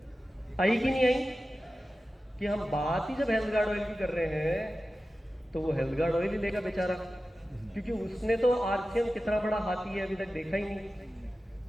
आई कि नहीं आई? कि हम बात ही जब हेल्थ गार्ड ऑयल की कर रहे हैं तो वो हेल्थ गार्ड ऑयल ही लेगा बेचारा, क्योंकि उसने तो आरसीएम कितना बड़ा हाथी है अभी तक देखा ही नहीं,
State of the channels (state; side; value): normal; both; correlation 0.94